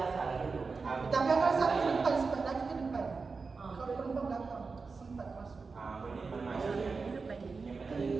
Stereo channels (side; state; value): left; quieter; 4.5 dB